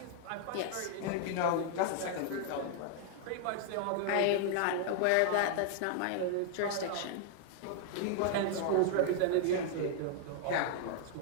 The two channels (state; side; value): different; both; correlation -0.01